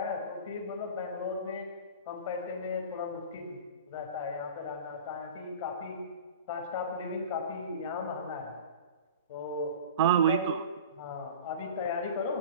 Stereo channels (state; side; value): inverted; both; correlation -0.36